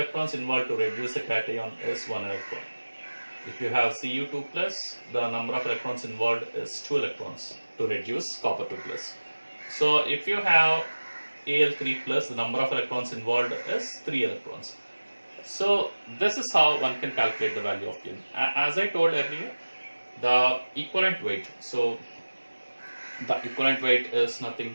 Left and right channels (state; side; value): inverted; both; correlation -1.00